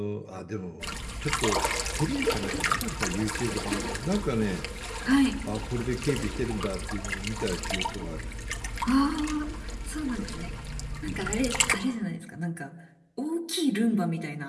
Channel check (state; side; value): identical; both; correlation 1.00